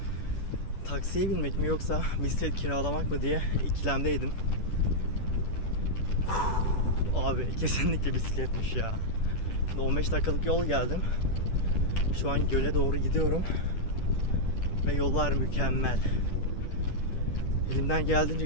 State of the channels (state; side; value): late; right; 10 ms